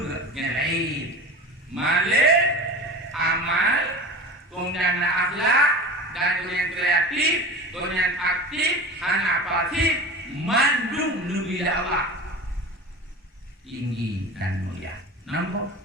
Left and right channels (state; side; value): normal; both; correlation 0.33